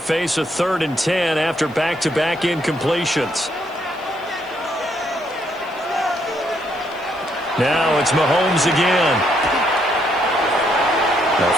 a 3rd and 10 after back-to-back incompletions. Now it's Mahomes again. The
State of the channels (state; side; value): noise; right; hiss, 29 dB below the sound